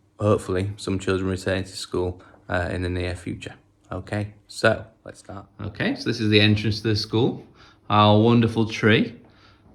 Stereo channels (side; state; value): both; identical; correlation 1.00